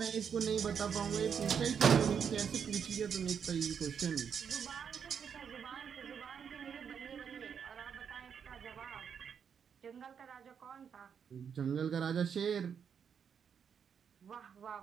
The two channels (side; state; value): left; quieter; 7.3 dB